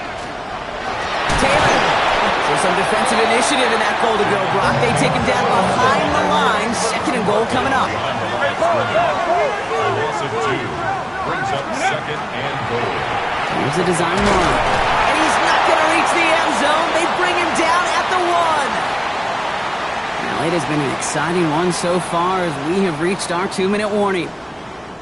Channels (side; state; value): both; identical; correlation 1.00